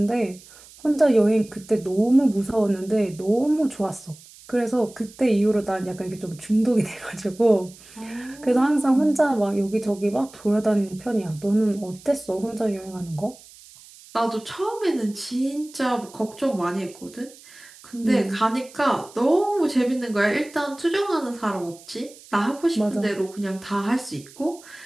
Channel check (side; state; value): right; noise; hiss, 22 dB below the sound